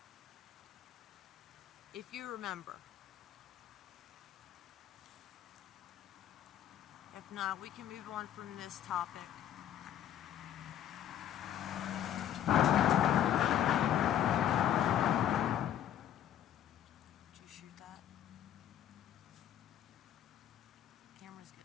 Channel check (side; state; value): right; quieter; 10.7 dB